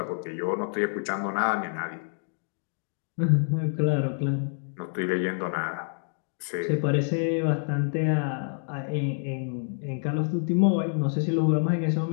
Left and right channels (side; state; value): right; silent; digital silence